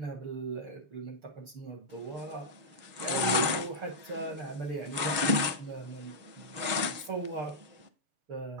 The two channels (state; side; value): late; left; 6.4 ms